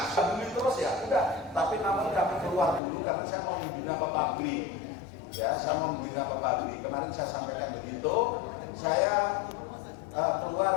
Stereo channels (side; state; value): right; drops out; at 2.8 s